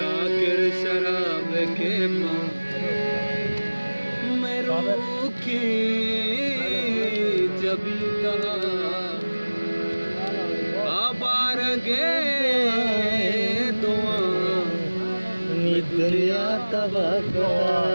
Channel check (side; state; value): both; inverted; correlation -1.00